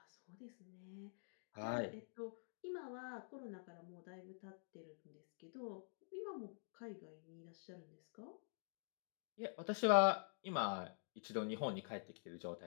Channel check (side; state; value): right; silent; digital silence